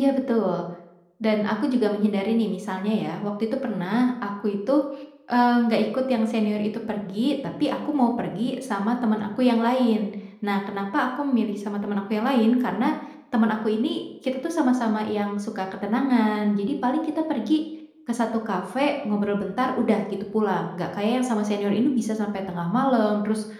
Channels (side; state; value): both; identical; correlation 1.00